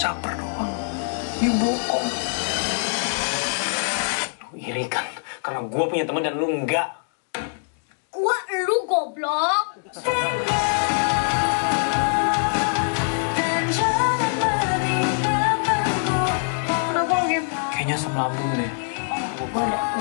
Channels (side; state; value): right; silent; 63 dB below the other